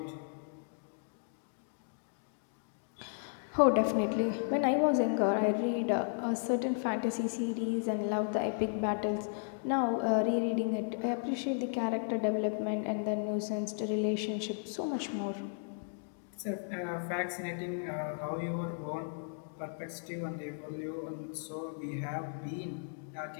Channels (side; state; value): right; silent; digital silence